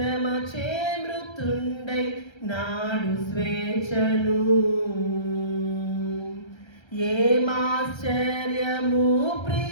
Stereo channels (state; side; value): late; right; 1.3 ms